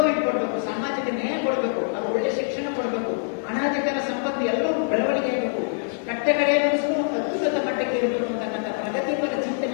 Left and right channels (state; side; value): silent; right; digital silence